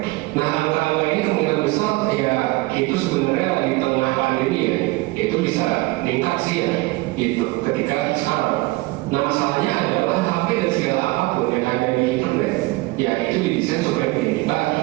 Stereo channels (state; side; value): quieter; left; 21.8 dB